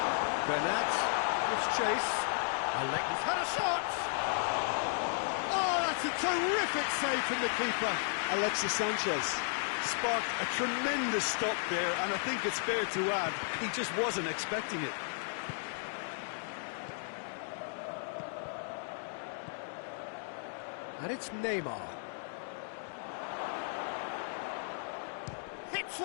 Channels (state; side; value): silent; right; digital silence